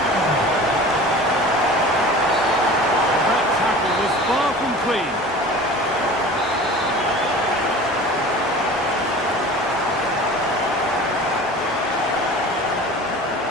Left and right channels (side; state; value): both; normal; correlation 0.40